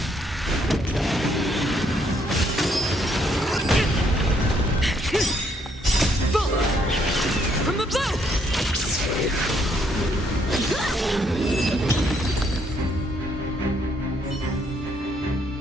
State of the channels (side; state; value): both; normal; correlation 0.70